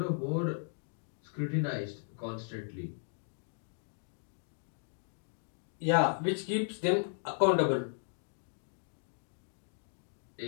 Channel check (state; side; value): silent; right; digital silence